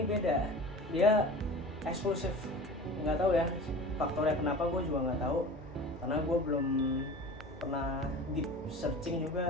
beda. Dia eksklusif. Nggak tahu ya faktornya kenapa, gue juga nggak tahu. Karena gue belum pernah deep searching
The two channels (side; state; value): both; normal; correlation 0.37